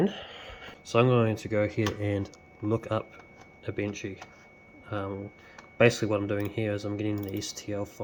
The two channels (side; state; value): both; identical; correlation 1.00